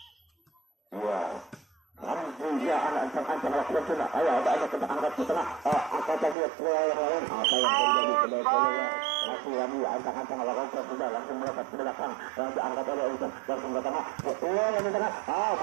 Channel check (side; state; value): left; drops out; at 6.4 s